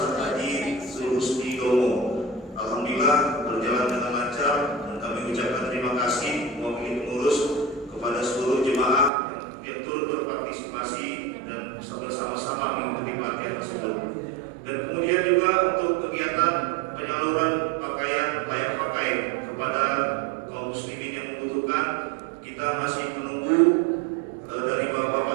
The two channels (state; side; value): drops out; left; at 9.1 s